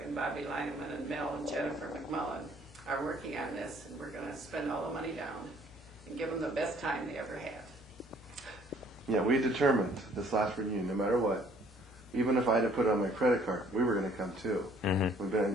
and Bobby Lineman and Mel and Jennifer McMullen are working on this, and we're going to spend all the money down and give them the best time they ever had. Yeah, we determined this last reunion, no matter what, even if I had to put it on my credit card, we were going to come too. Mm-hmm. We've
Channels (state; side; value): normal; both; correlation 0.59